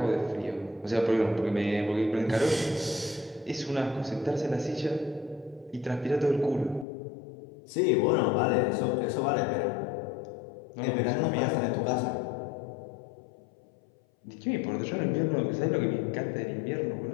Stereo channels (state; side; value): drops out; right; at 6.9 s